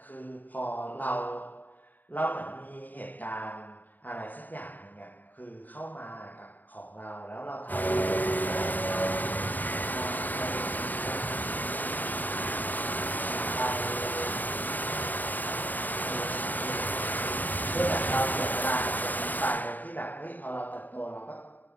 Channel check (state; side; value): late; right; 0.085 ms